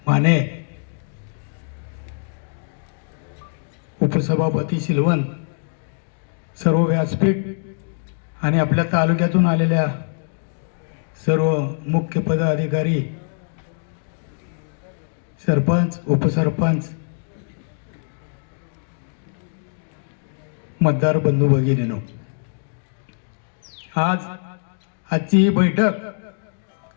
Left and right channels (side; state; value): right; silent; digital silence